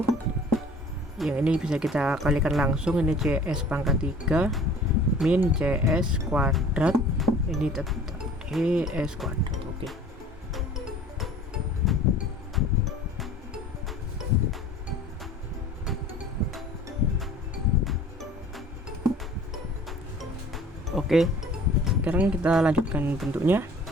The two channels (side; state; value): both; normal; correlation 0.47